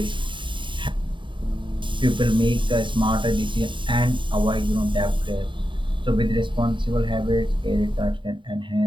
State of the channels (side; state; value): left; late; 0.23 ms